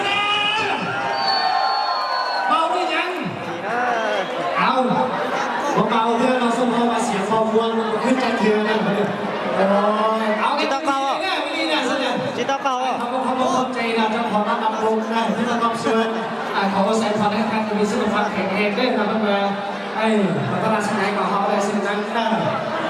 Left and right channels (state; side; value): identical; both; correlation 1.00